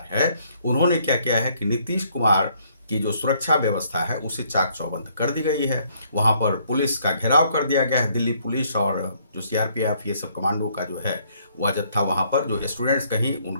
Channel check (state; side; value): inverted; both; correlation -0.66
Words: है, उन्होंने क्या किया है कि नीतीश कुमार की जो सुरक्षा व्यवस्था है उसे चाक चौबंद कर दी गई है। वहाँ पर पुलिस का घेराव कर दिया गया है। दिल्ली पुलिस और जो सीआरपीएफ ये सब कमांडो का जो है वह जत्था वहाँ पर, जो स्टूडेंट्स कहीं